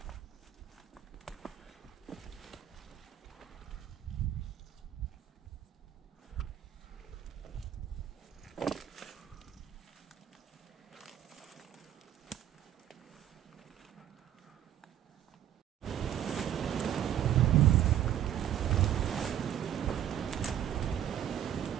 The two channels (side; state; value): left; quieter; 11.0 dB